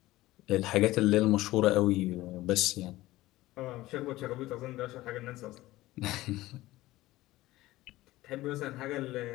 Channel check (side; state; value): right; quieter; 17.3 dB